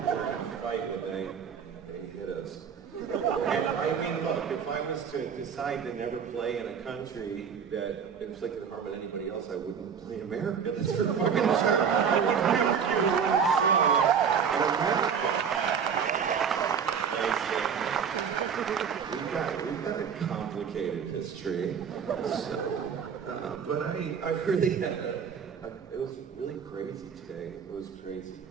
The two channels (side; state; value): left; quieter; 7.0 dB